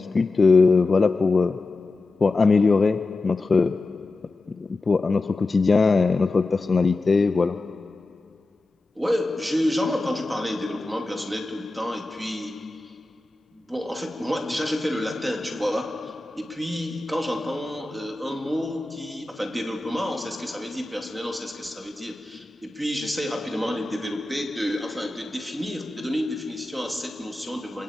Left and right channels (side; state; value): right; quieter; 3.2 dB